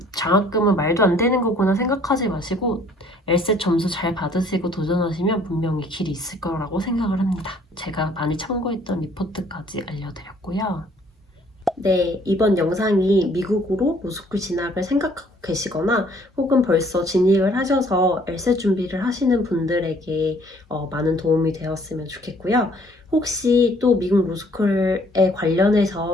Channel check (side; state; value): both; normal; correlation 0.60